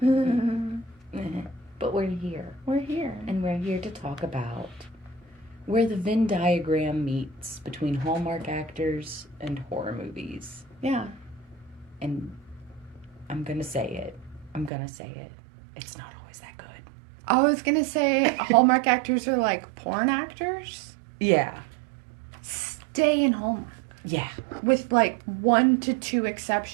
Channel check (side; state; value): left; drops out; at 14.7 s